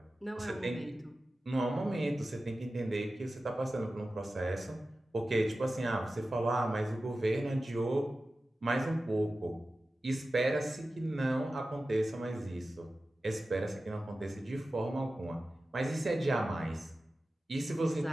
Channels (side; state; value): both; normal; correlation 0.94